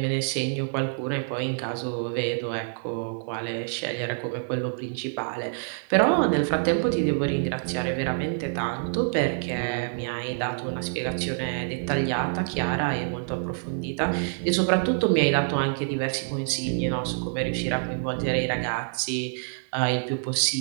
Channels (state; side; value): silent; left; 60 dB below the other